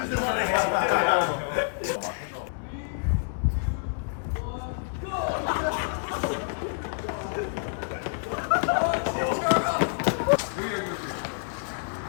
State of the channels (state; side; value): silent; right; digital silence